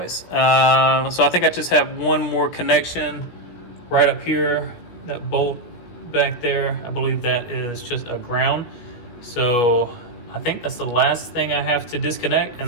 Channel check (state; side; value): late; right; 16 ms